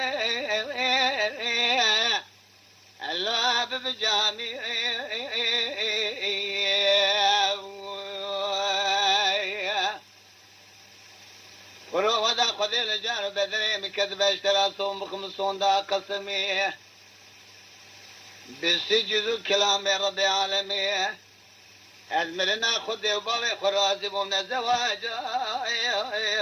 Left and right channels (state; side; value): identical; both; correlation 1.00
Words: الله بجامي ورو ودا خذ الجار بدري مكذب اشترى صوم بخمسون دا قسمي بسجد كلام رب العالمين أزمرنا خذ وباري خرازي ومن الزواج